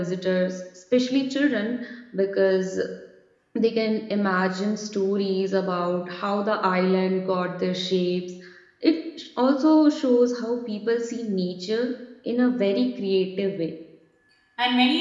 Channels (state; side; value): identical; both; correlation 1.00